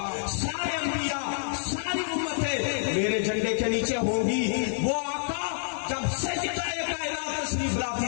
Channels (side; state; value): right; silent; 59 dB below the other